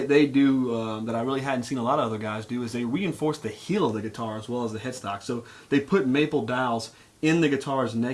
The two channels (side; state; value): both; identical; correlation 1.00